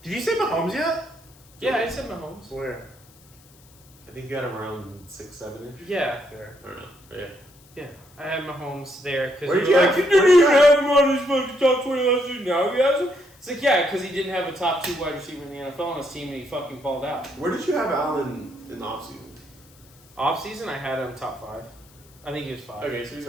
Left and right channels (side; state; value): left; noise; hiss, 27 dB below the sound